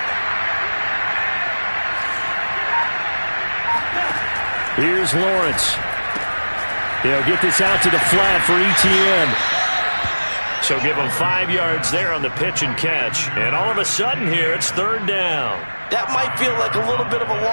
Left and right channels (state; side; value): inverted; both; correlation -1.00